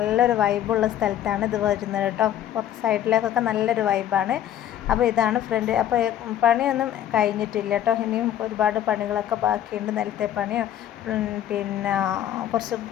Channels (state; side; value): quieter; right; 11.1 dB